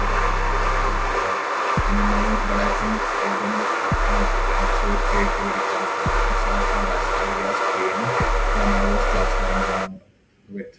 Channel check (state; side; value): identical; both; correlation 1.00